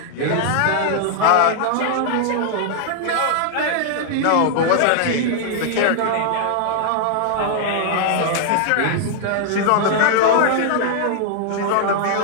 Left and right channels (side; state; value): both; different; correlation -0.01